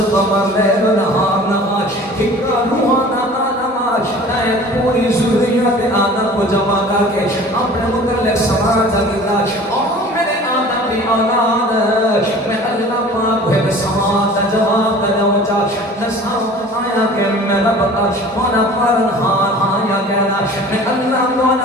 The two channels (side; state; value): both; normal; correlation 0.44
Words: قمر لیل نہار نہار ہکا روحانا پوری ضروریات آدم کو جمع کر کے اپنے متعلق سماج اگلا اور میرے آدم کی اولاد میں اللہ پاک ہوئے سماج جواب دلوچا نساؤ آیا کہ میں رب مولا پرنہان آیا کہنا میں اللہ